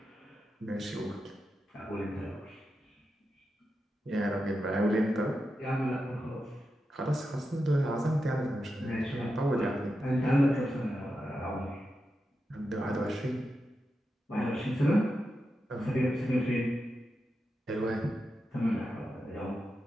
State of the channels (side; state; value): both; normal; correlation 0.89